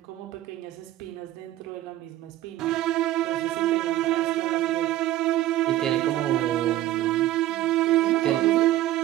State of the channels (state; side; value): quieter; left; 14.2 dB